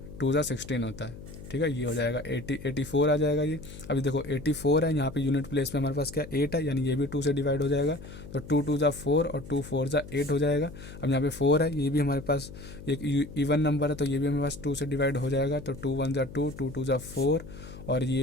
2 ज़ा 16 होता है, ठीक है। ये हो जाएगा 84 आ जाएगा ये। अभी देखो 84 है, यहाँ पे यूनिट प्लेस में हमारे पास क्या 8 है, यानी ये भी 2 से डिवाइड हो जाएगा। तो 2 2 ज़ा 4 और 2 4 ज़ा 8 हो जाएगा। अब यहाँ पे 4 है, ये भी हमारे पास एक इवन नंबर है, तो ये भी हमारे पास 2 से डिवाइड हो जाएगा। तो 2 1 ज़ा 2, 2 2 ज़ा 4, और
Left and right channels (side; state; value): left; noise; hum, 14 dB below the sound